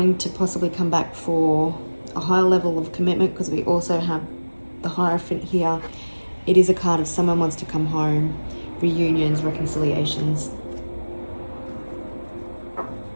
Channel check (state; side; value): inverted; both; correlation -1.00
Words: to possibly come back for a higher level of commitment, because we also have the Hierophant here. It is a card of someone wants to come home, reunions, reconciliations.